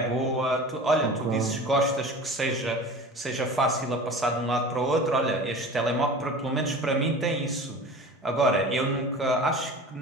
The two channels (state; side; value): normal; both; correlation 0.37